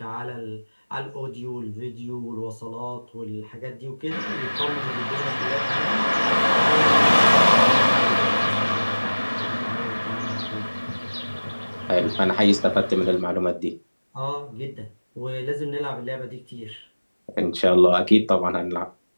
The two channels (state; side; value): inverted; both; correlation -1.00